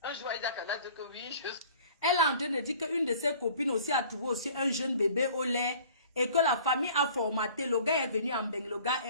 Un jour, il a qu'à dire que oui, je... Elle est en train de dire qu'une de ses copines aussi a trouvé aussi un jeune bébé au lait et que la famille a formaté. Le gars est venu en Beng, le gars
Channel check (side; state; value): both; inverted; correlation -0.50